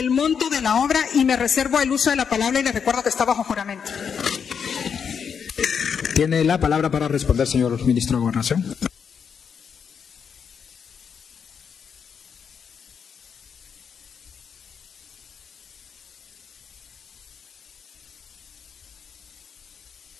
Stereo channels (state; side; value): quieter; right; 6.9 dB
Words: monto de la obra? Y me reservo el uso de la palabra y le recuerdo que está bajo juramento. Tiene la palabra para responder, señor ministro de Gobernación.